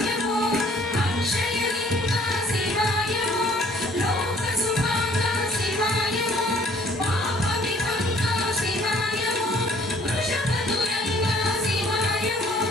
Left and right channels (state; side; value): normal; both; correlation 0.58